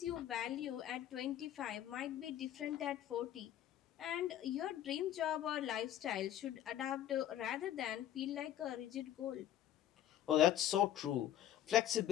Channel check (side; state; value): right; quieter; 11.6 dB